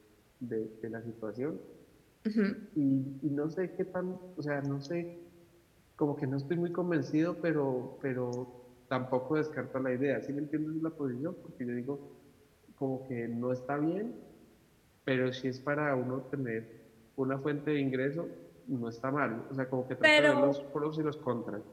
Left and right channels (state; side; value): identical; both; correlation 1.00